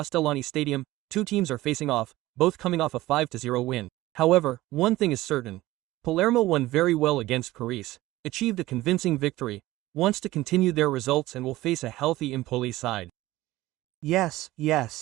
Stadium, two teams are facing off, both coming off a 5-0 win. However, one thing is certain. Palermo won very well against Carisse, achieved a convincing victory, wants to continue their results and will face a healthy Empoli side. Yes.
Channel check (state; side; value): quieter; left; 17.3 dB